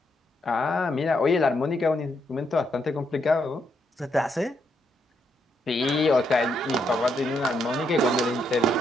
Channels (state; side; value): normal; both; correlation 0.77